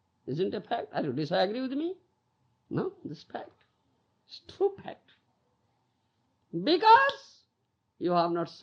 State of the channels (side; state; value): both; identical; correlation 1.00